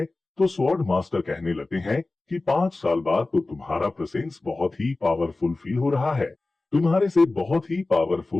तो स्वॉर्ड मास्टर कहने लगते हैं कि 5 साल बाद तो तुम्हारा प्रेजेंस बहुत ही पावरफुल फील हो रहा है। तुम्हारे से बहुत ही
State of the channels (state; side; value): quieter; right; 3.2 dB